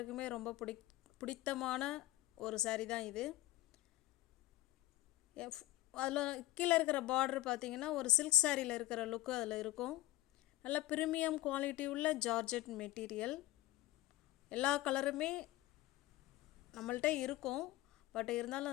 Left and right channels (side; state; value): right; quieter; 16.5 dB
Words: ரொம்ப பிடித்தமான ஒரு saree தான் இது. அதில் கீழே இருக்கிற பார்டர் பார்த்தீங்கன்னா ஒரு சில்க் சாரியில் இருக்கிற லுக்கு அதில் இருக்கும். நல்ல ப்ரீமியம் குவாலிட்டி உள்ள ஜார்ஜெட் மெட்டீரியல். எல்லா கலருமே நம்மள்கிட்ட இருக்கும், பட் இருந்தாலும்